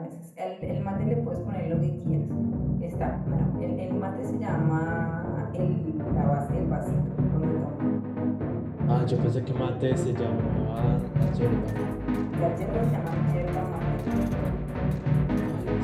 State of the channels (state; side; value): identical; both; correlation 1.00